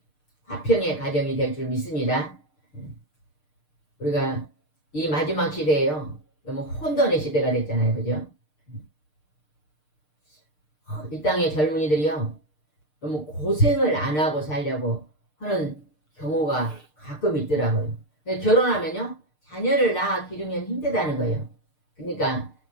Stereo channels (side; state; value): right; late; 6.6 ms